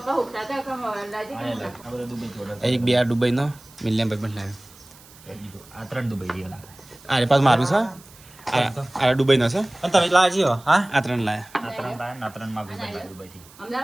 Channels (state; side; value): noise; right; hiss, 23 dB below the sound